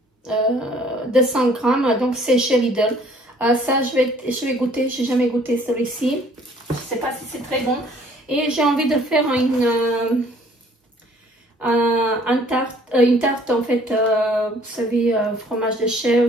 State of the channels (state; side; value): normal; both; correlation 0.58